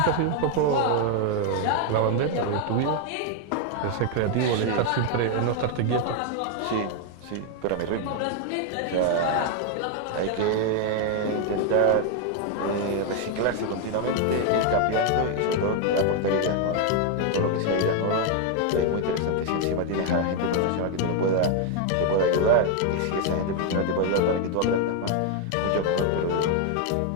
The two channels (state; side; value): different; both; correlation 0.01